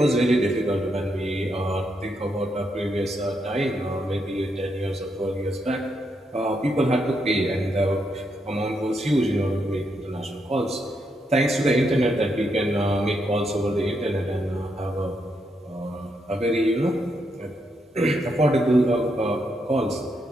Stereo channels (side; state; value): both; normal; correlation 0.80